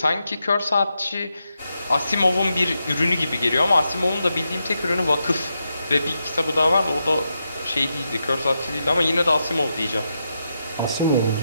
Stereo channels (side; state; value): both; inverted; correlation -0.85